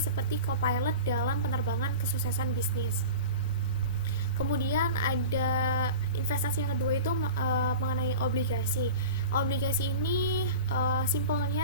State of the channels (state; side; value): inverted; both; correlation -0.32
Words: co-pilot dalam penerbangan kesuksesan bisnis. Kemudian ada investasi yang kedua itu mengenai obligasi. Obligasi ini